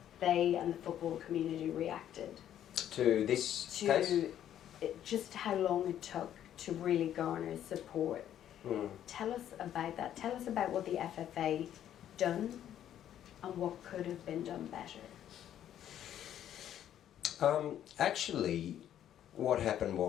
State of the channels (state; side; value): quieter; right; 10.8 dB